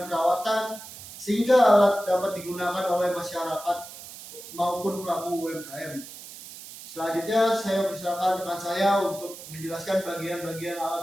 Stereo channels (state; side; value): noise; right; hiss, 14 dB below the sound